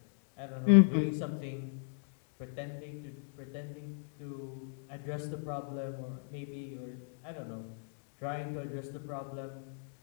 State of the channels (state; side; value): silent; right; digital silence